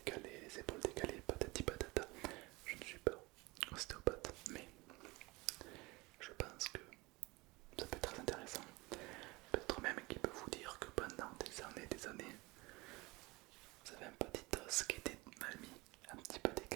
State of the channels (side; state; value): left; quieter; 23.4 dB